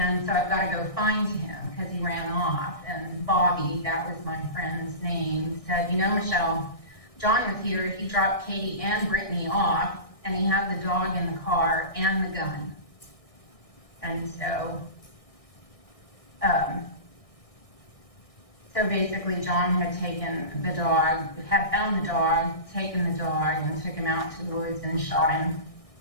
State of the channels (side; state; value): right; late; 1.6 ms